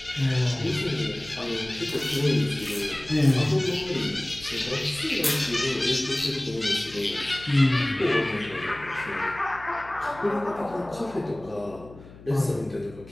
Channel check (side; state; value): left; noise; hum, 19 dB below the sound